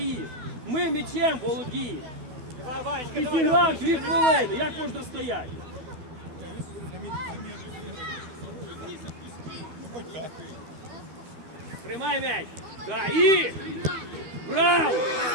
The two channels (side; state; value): left; late; 12 ms